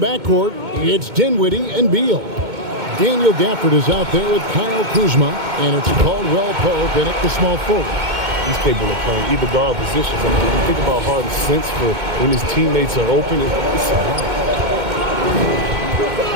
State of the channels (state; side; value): late; left; 2.2 ms